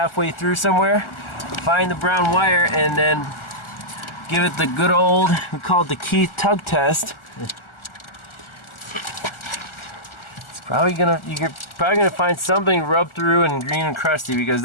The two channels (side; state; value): right; late; 1.4 ms